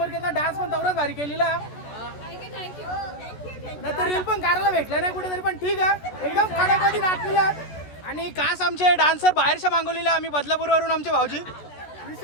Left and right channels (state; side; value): late; right; 14 ms